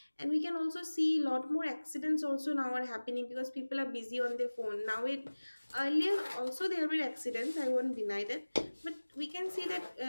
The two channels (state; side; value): inverted; both; correlation -1.00